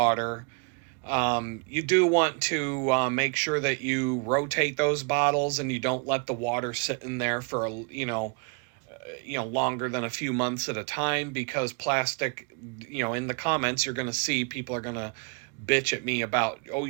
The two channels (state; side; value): quieter; left; 36.6 dB